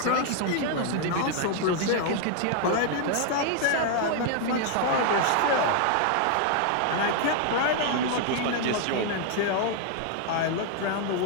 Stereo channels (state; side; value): different; both; correlation 0.00